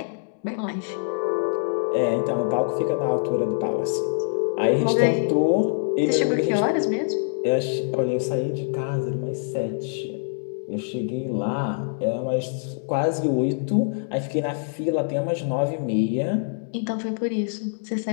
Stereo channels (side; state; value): right; silent; digital silence